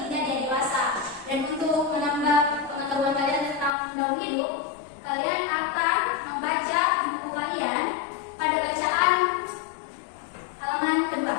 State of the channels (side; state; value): right; drops out; at 3.7 s